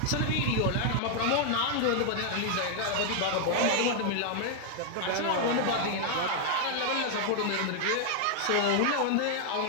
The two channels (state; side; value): different; both; correlation 0.00